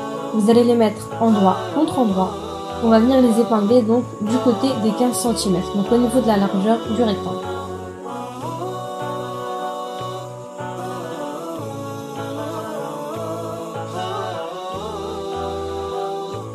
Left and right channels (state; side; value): identical; both; correlation 1.00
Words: Vous allez les mettre endroit contre endroit. On va venir les épingler donc du côté des 15 cm, donc au niveau de la largeur du rectangle.